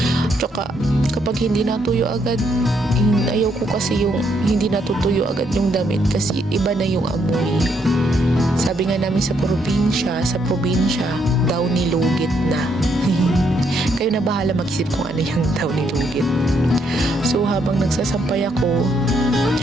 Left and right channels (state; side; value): normal; both; correlation 0.74